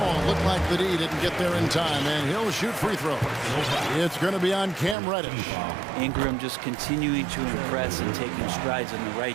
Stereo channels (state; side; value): drops out; left; at 5.0 s